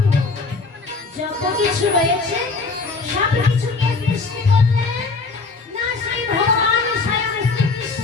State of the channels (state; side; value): quieter; right; 4.0 dB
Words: যত কিছু রয়েছে সব কিছুকে সৃষ্টি করলেন না সেই ভগবান স্বয়ং